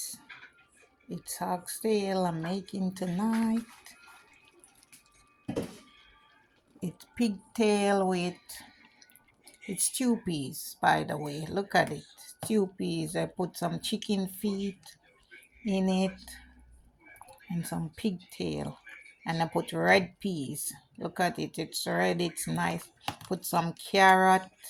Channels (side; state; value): both; identical; correlation 1.00